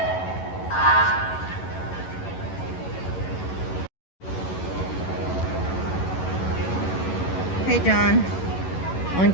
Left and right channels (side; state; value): right; late; 11 ms